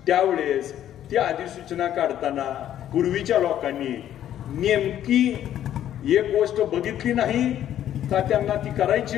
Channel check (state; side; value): quieter; right; 11.3 dB